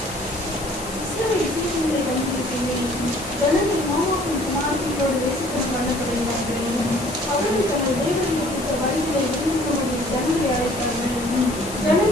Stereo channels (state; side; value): noise; left; hiss, 12 dB below the sound